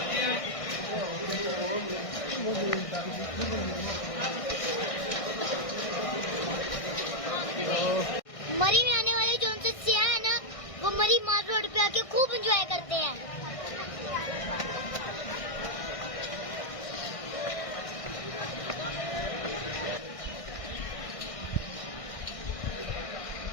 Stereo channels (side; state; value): right; late; 1.6 ms